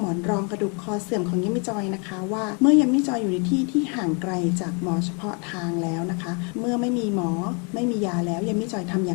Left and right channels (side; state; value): right; quieter; 35.8 dB